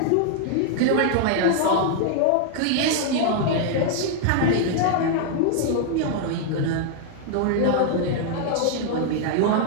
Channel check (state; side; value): different; both; correlation 0.00